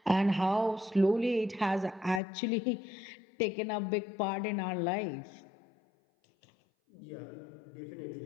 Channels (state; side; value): drops out; right; at 2.2 s